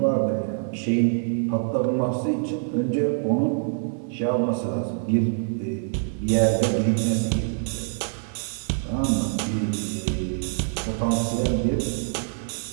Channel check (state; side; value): silent; left; 62 dB below the other